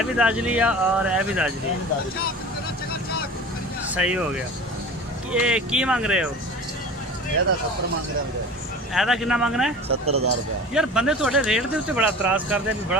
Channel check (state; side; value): normal; both; correlation 0.37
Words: ਵੀ ਦਾਜਲੀ ਆ ਔਰ ਇਹ ਵੀ ਦਾਜਲੀ। ਸਹੀ ਹੋ ਗਿਆ। ਇਹ ਕੀ ਮੰਗ ਰਹੇ ਹੋ? ਇਹਦਾ 70 ਮੰਗ ਰਿਹਾ ਵੀਰੇ। ਇਹਦਾ ਕਿੰਨਾ ਮੰਗਣਾ ਹੈ? 70000 ਰੁਪਏ। ਯਾਰ ਬੰਦੇ ਤੁਹਾਡੇ ਰੇਟ ਦੇ ਉੱਤੇ ਬੜਾ ਇਤਰਾਜ਼ ਕਰਦੇ ਨੇ,